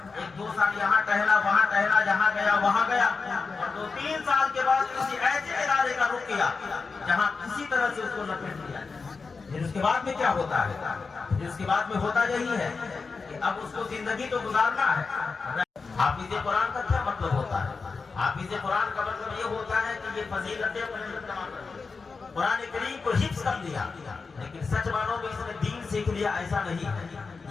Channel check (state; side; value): quieter; right; 4.6 dB